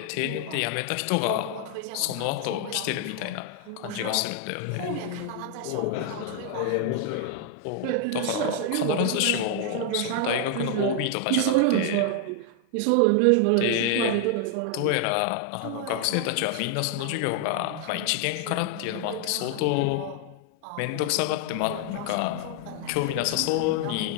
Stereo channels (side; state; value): both; different; correlation 0.00